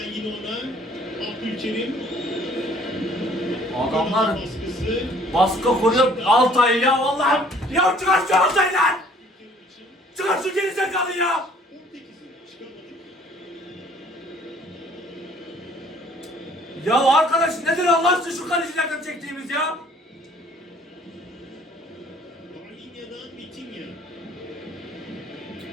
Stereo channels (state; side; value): normal; both; correlation 0.57